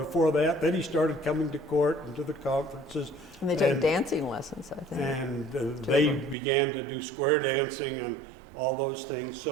that. Then he started coming to court and to the conferences. And they took dancing lessons, I think. And they began to do square dancing and all those things.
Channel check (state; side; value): drops out; left; at 6.4 s